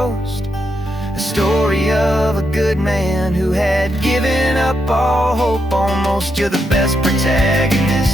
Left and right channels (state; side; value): normal; both; correlation 0.82